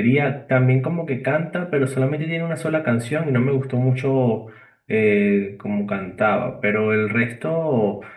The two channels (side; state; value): both; identical; correlation 1.00